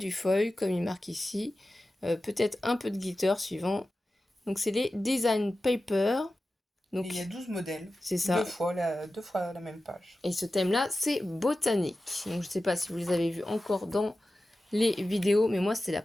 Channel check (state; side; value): normal; both; correlation 0.94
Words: foil, comme il marque ici. Peut-être un peu de glitter suivant. Donc, c'est les design paper. Donc, et il y a 12 modèles. C'est ça. Deux fois la même page. Et ce thème-là, c'est botanique. Donc, je ne sais pas si vous les avez vus encore dans les vidéos, mais moi, c'est la